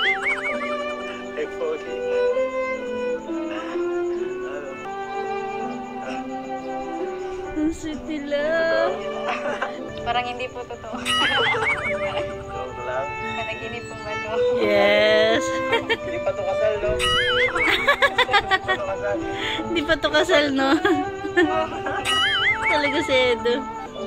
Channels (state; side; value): identical; both; correlation 1.00